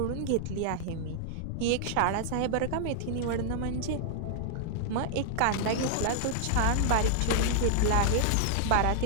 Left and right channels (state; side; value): different; both; correlation -0.01